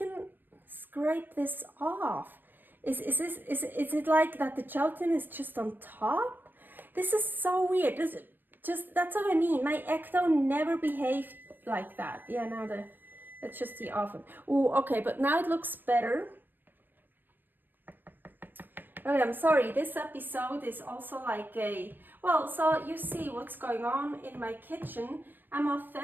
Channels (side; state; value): left; late; 0.093 ms